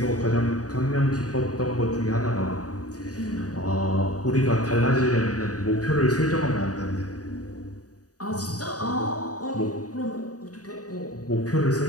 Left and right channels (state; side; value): late; right; 0.67 ms